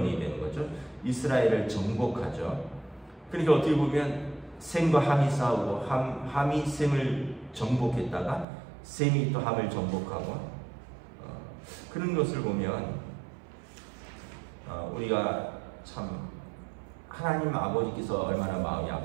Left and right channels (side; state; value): left; drops out; at 8.5 s